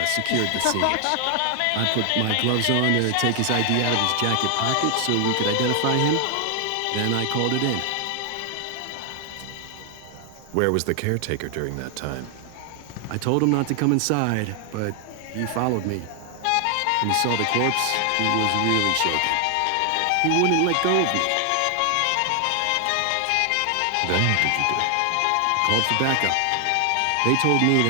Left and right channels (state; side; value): different; both; correlation 0.00